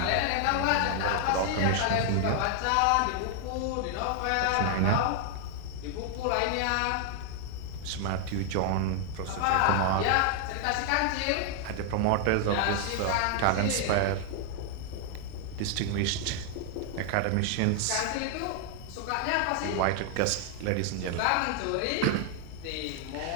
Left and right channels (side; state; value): both; different; correlation 0.00